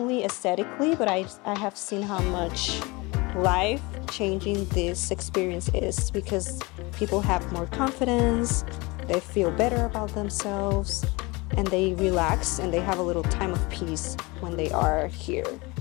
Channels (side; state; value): right; quieter; 24.8 dB